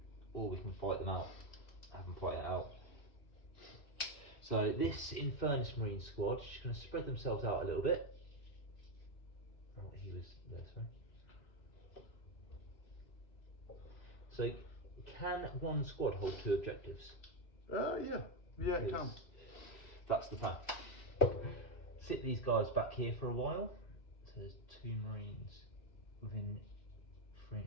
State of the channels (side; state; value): right; late; 2.6 ms